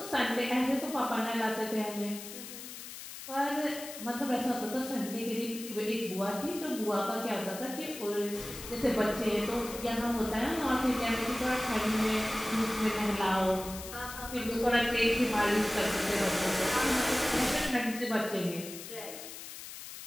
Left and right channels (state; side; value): noise; left; hiss, 11 dB below the sound